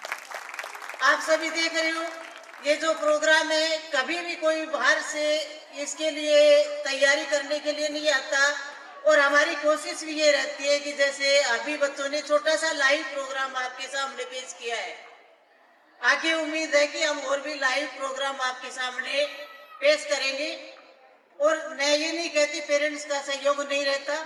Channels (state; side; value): identical; both; correlation 1.00